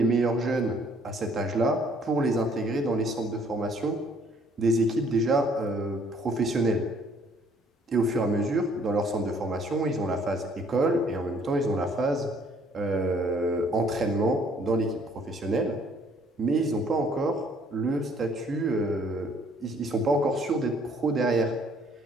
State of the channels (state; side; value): normal; both; correlation 0.61